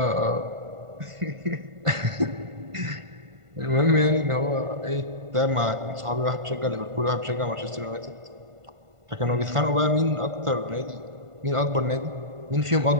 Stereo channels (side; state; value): left; late; 1.5 ms